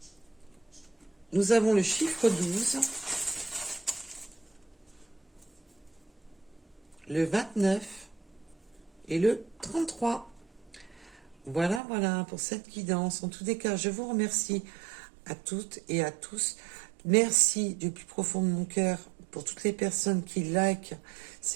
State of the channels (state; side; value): drops out; left; at 11.8 s